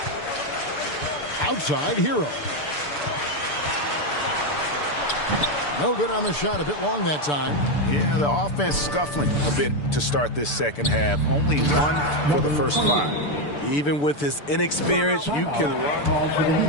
Outside Hero. No good on the shot, a bit long that time. Yeah, the offense scuffling a bit to start this second half. Only 1 for the first 5. Even with his inexperience, you can run.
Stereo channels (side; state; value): right; late; 6.8 ms